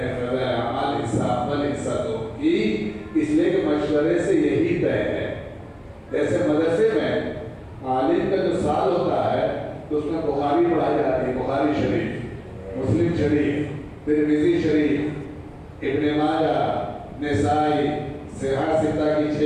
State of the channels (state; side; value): identical; both; correlation 1.00